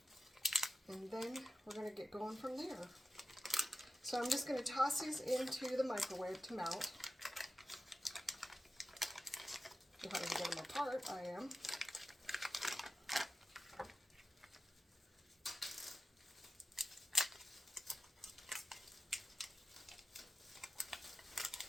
And then we're going to get going from there. So I'm just going to toss these into the microwave to melt. If I can get them apart, I am.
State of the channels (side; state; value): both; normal; correlation 0.94